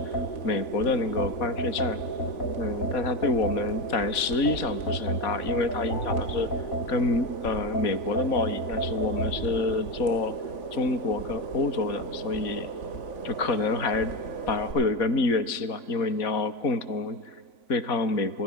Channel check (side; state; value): right; late; 3.6 ms